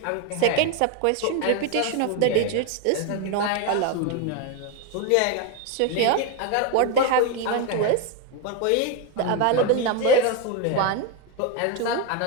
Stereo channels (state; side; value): different; both; correlation 0.02